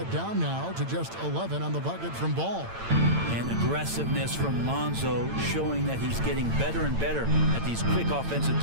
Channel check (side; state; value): left; late; 8.9 ms